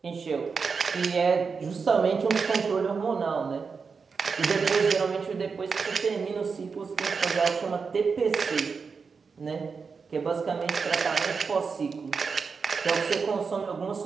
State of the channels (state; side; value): quieter; left; 5.2 dB